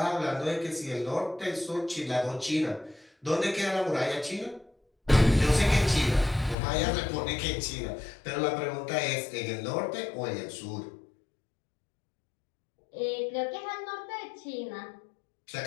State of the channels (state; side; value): drops out; right; at 6.6 s